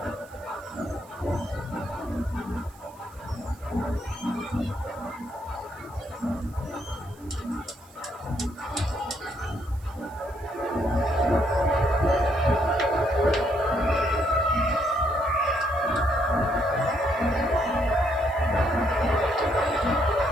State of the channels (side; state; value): right; noise; hiss, 26 dB below the sound